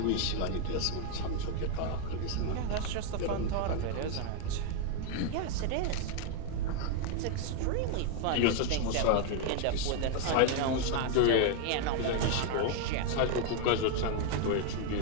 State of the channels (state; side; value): different; both; correlation 0.00